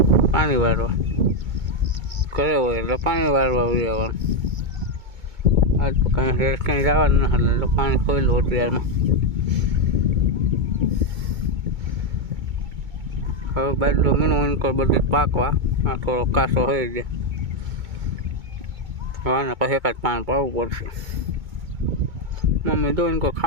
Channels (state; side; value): late; left; 2.2 ms